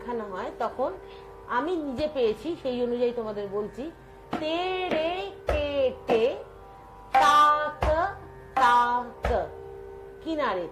হয়, তখন আমি নিজে পেয়েছি, সেই অনুযায়ী তোমাদের বলছি, তেরে কেটে তাক তাক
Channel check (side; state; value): both; identical; correlation 1.00